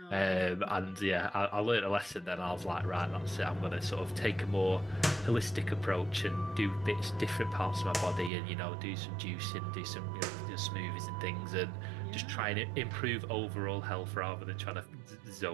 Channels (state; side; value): drops out; left; at 8.3 s